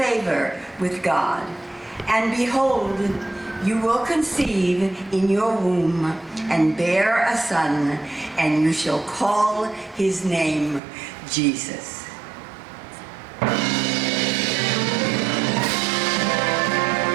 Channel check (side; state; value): left; drops out; at 10.8 s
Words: with God. And behold, you will conceive in your womb and bear a son, and you shall call his name Jesus."